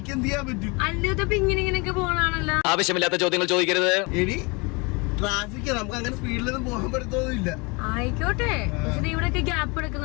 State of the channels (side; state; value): right; quieter; 28.8 dB